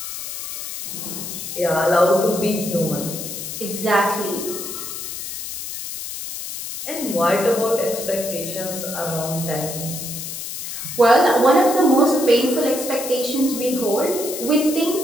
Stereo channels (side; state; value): left; noise; hiss, 7 dB below the sound